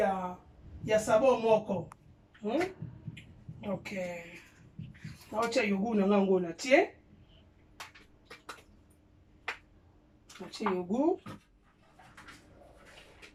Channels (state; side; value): identical; both; correlation 1.00